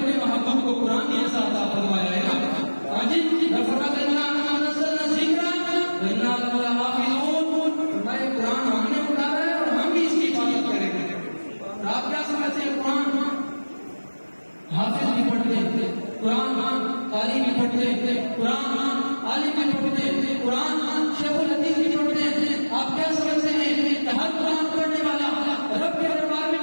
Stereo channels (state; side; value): inverted; both; correlation -1.00